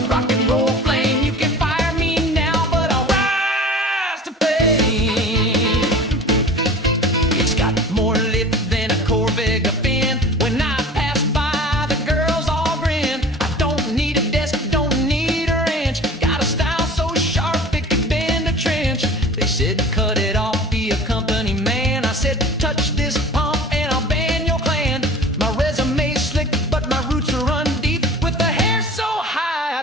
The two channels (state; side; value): normal; both; correlation 0.41